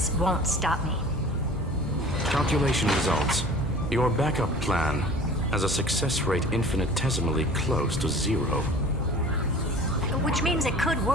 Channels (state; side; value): normal; both; correlation 0.44